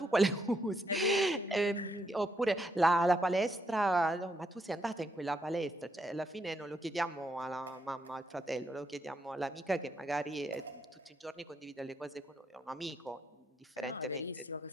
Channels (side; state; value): both; normal; correlation 0.77